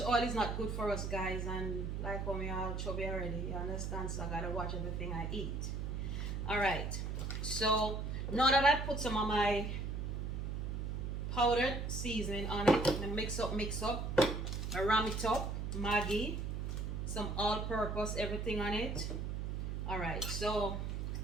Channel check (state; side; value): noise; right; hum, 3 dB below the sound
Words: oil is not good for us, guys, and like how me all chubby already, you understand? So I gotta watch everything I eat. All right, so now that I put some of my powdered seasoning on it, and mix up. I Ram It Up, Maggi, some all-purpose, everything on it. All right, so